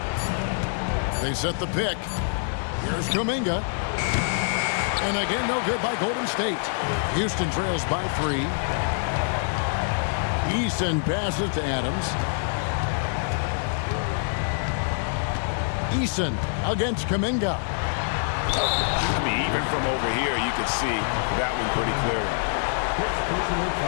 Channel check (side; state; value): right; silent; digital silence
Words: They set the pick. Here's Kuminga. And again, no good by Golden State. Houston trails by 3. Eason passes to Adams. Eason against Kuminga. I mean, even from over here, you could see that one pretty clearly. Personal